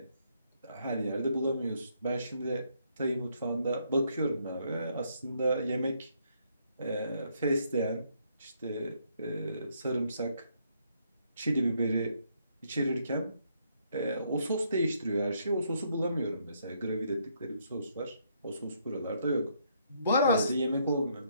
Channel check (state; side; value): inverted; both; correlation -0.72